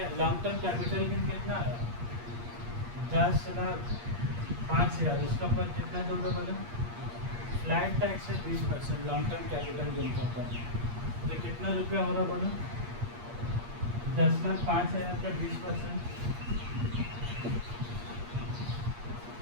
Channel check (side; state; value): left; late; 8.5 ms